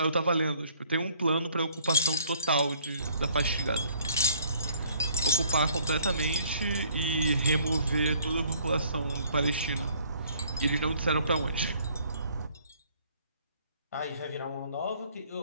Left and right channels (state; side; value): inverted; both; correlation -0.60